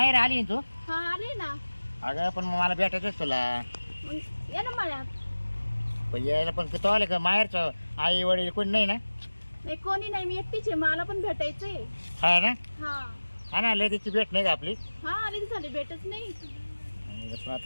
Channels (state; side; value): inverted; both; correlation -1.00